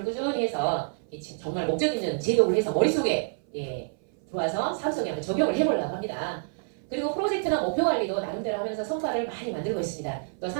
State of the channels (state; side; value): silent; left; 56 dB below the other